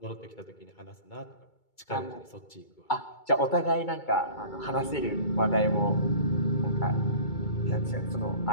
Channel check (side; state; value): right; late; 2.3 ms